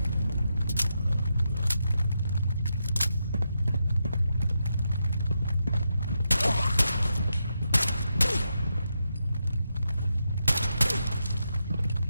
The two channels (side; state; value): both; inverted; correlation -0.85